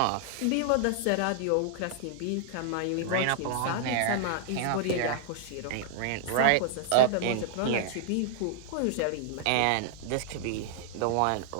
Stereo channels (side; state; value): both; different; correlation -0.01